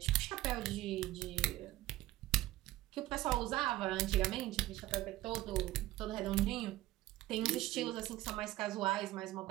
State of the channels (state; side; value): quieter; left; 16.4 dB